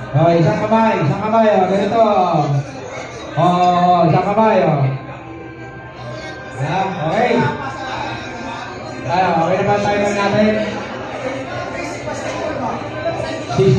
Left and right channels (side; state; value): both; identical; correlation 1.00